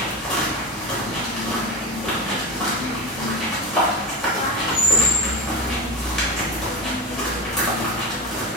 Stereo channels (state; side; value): normal; both; correlation 0.23